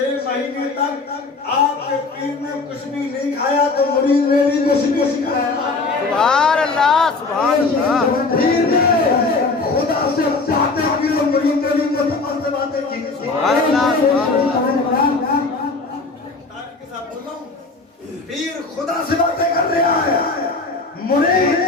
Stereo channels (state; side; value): quieter; right; 3.8 dB